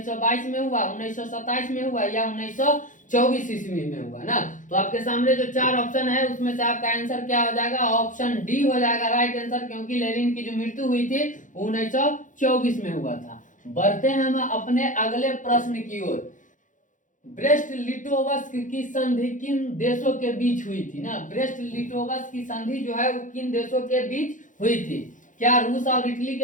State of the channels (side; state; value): right; late; 0.37 ms